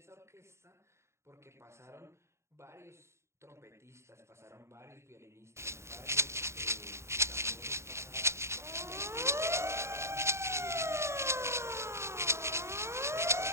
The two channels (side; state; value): left; late; 0.13 ms